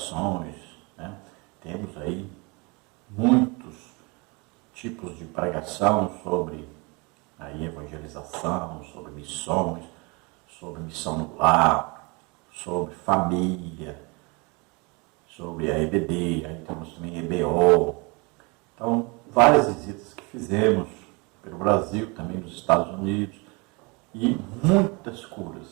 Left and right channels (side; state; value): left; quieter; 28.6 dB